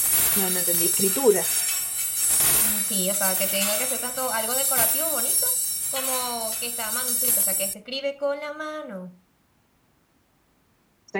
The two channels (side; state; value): both; identical; correlation 1.00